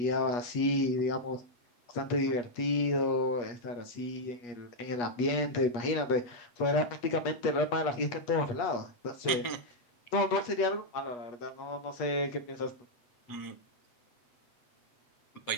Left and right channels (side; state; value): right; late; 8.3 ms